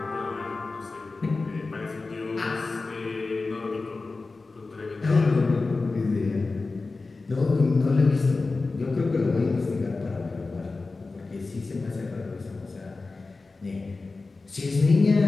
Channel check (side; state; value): right; quieter; 3.7 dB